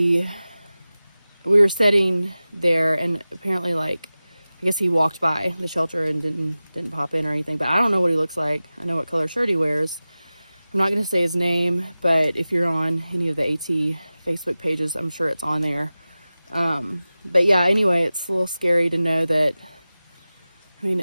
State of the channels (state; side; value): inverted; both; correlation -0.96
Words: were sitting there, and apparently, like, I guess he walked by the shelter and didn't pop in or anything, but I don't know what he looks like. I know what color shirt he wears. I'm not going to say his name, but if you're on any of the AT Facebook pages, I'm sure it's on there. But yeah, anyway, it's a little scary to know that, I mean,